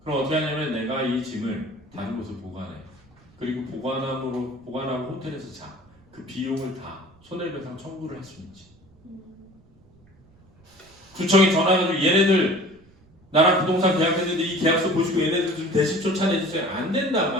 그럼 어떻게 하냐면 내가 이 짐을 다른 곳에 보관해. 그리고 보관하고 호텔에서 자. 그 비용을 다 손해배상 청구를 할 수 있지. 구청에 전화해가지고 얘네들 나랑 부동산 계약했는데 이 계약서 보시고 얘네들 좀 대신 쫓아내주세요. 안 된단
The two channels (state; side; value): noise; right; rumble, 29 dB below the sound